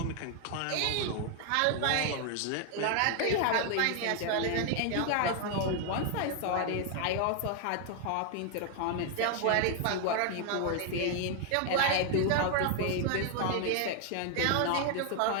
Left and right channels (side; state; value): both; different; correlation 0.00